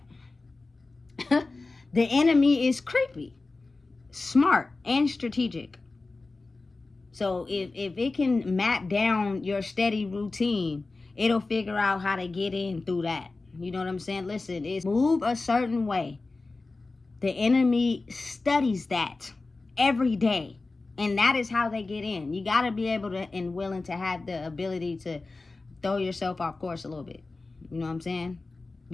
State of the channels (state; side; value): quieter; right; 3.5 dB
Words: the enemy is creepy, smart, and strategic. So if it can map down your steady routine, it'll figure out how to get in through that. You know what I'm saying? Listen, it's move a certain way. The enemy studies that every day. And that is how they get in. You got to be able to and willing to have the ability to throw yourself off course a little bit. You know what I'm saying?